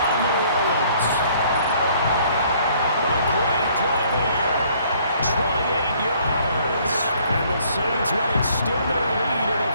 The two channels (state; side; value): inverted; both; correlation -0.61